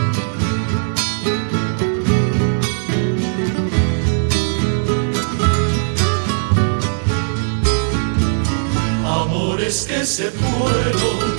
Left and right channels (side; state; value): left; silent; digital silence